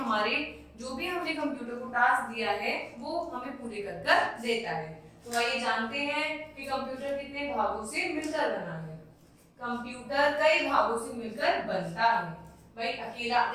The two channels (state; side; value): identical; both; correlation 1.00